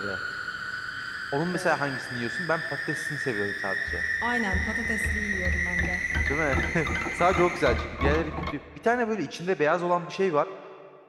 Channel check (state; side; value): identical; both; correlation 1.00